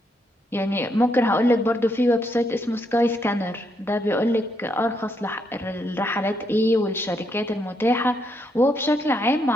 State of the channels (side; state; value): both; normal; correlation 0.77